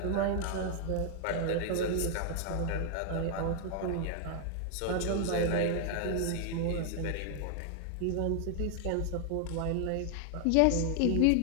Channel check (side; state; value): both; different; correlation 0.00